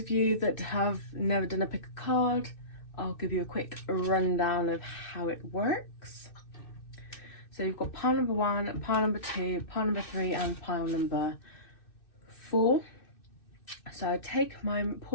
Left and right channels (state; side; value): late; right; 2.6 ms